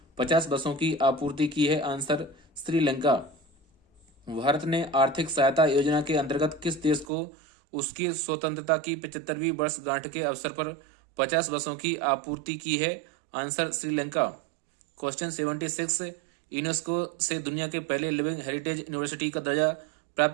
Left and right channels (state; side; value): drops out; left; at 7.1 s